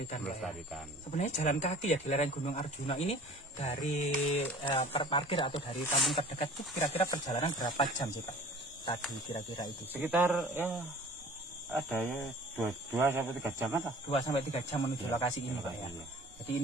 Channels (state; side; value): normal; both; correlation 0.46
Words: Ya. Sebenarnya jalan kaki ya di lereng Gunung Arjuna ini dari parkir atau dari kampung terdekat itu kira-kira perjalanan berapa jam sih, Pak? Tadi kira-kira itu sekitar ya ada ya 2 sampai 3 jam lah. 2 sampai 3 jam menuju lokasi ini, Pak ya. Jadi